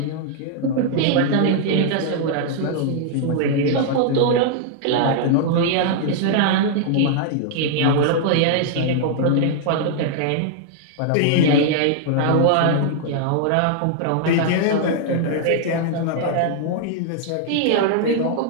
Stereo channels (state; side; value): different; both; correlation -0.01